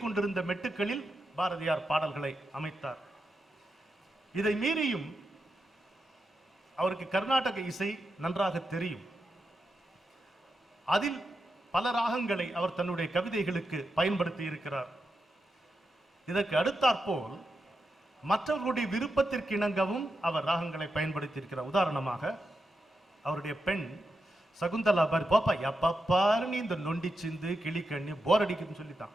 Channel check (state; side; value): normal; both; correlation 0.87